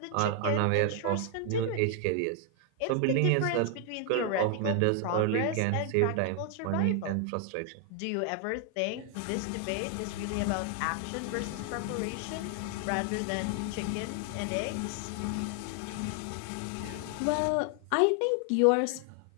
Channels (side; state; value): both; different; correlation 0.00